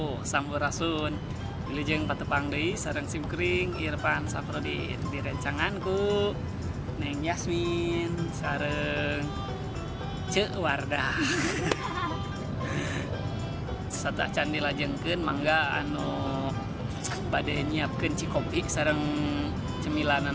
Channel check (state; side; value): identical; both; correlation 1.00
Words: Sampurasun. Wilujeng patepang deui sareng simkuring Irfan Saprodi di rencanganku Neng Yasmin sareng Ceu Wardah. Satah can dilajengkeun mangga anu bade nyiapkeun cikopi sareng